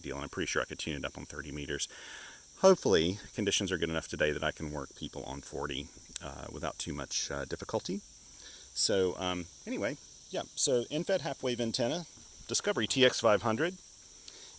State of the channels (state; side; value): identical; both; correlation 1.00